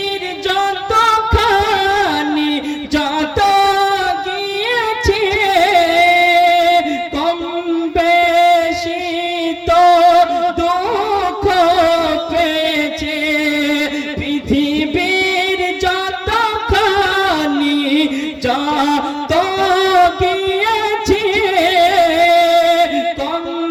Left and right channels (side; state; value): both; identical; correlation 1.00